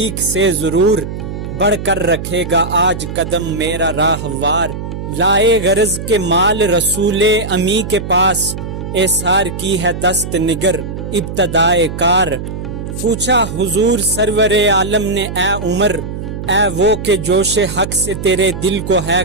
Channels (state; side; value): noise; right; hum, 7 dB below the sound